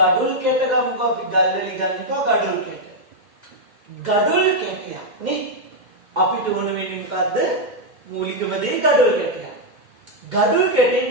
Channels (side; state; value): left; late; 2.1 ms